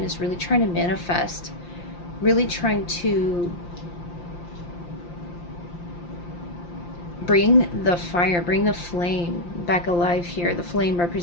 is really trying to manifest, really trying to bring the fire, bring the flame back alive here. The flame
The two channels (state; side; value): late; right; 5.8 ms